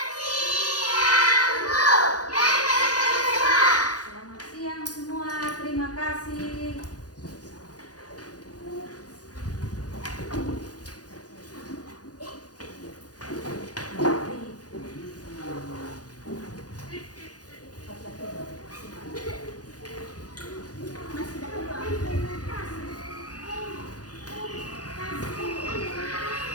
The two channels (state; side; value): late; right; 0.68 ms